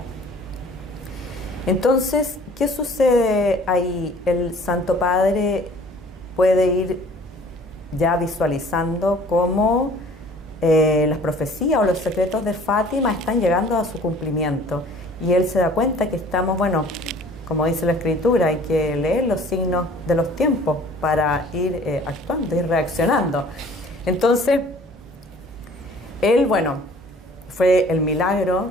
Entonces, ¿qué sucede ahí? El Santo Padre puede ir ya visualizando cómo las profecías o los secretos de Fátima están llegando a su cumplimiento, y él se da cuenta que estamos, bueno, como dice la Escritura, hay que leer los signos de los tiempos para ir actuando, ir reaccionando. Entonces, él, bueno, fue el milagro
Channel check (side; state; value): both; normal; correlation 0.51